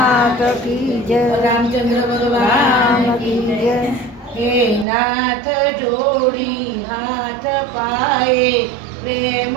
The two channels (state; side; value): drops out; left; at 4.9 s